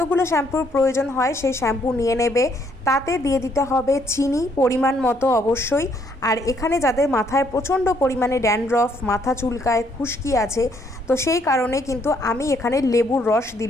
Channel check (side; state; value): both; normal; correlation 0.69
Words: শ্যাম্পুর প্রয়োজন হয় সেই শ্যাম্পু নিয়ে নেবে। তাতে দিয়ে দিতে হবে চিনি পরিমাণ মতো অবশ্যই। আর এখানে যাদের মাথায় প্রচণ্ড পরিমাণে ড্যান্ড্রফ, মাথা চুলকায়, খুশকি আছে, তো সেই কারণে কিন্তু আমি এখানে লেবুর রস